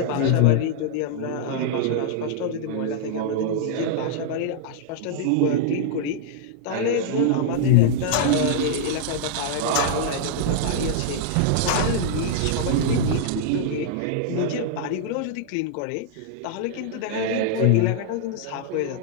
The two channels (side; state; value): both; different; correlation -0.01